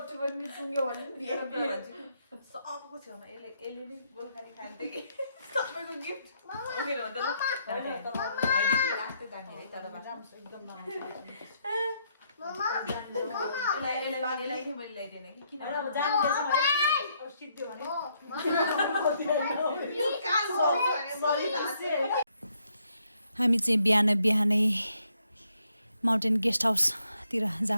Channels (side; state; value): both; inverted; correlation -0.74